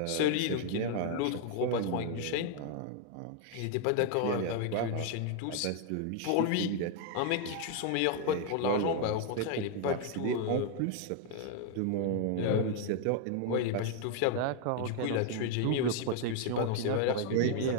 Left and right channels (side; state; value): both; different; correlation 0.00